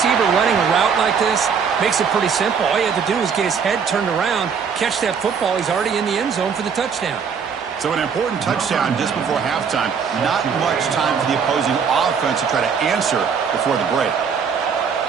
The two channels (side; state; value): left; quieter; 6.5 dB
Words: running a route like this, makes it pretty simple. All you have to do is get his head turned around, catch that football. He's already in the end zone for the touchdown. So an important touchdown just before halftime. Not much time for the opposing offense to try to answer before the break.